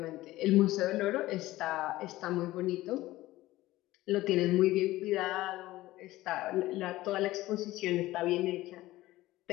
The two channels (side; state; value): right; quieter; 17.1 dB